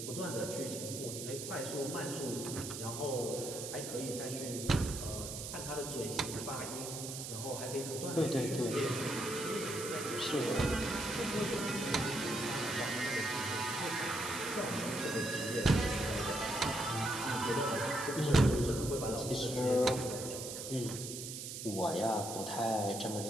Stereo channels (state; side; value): noise; right; hiss, 7 dB below the sound